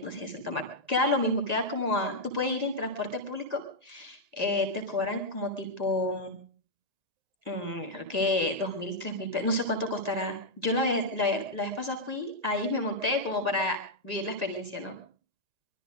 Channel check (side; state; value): left; late; 1.9 ms